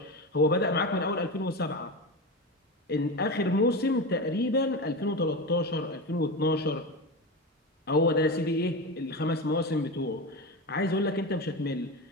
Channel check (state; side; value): normal; both; correlation 0.21